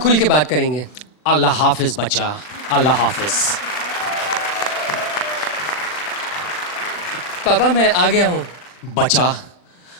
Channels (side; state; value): right; late; 40 ms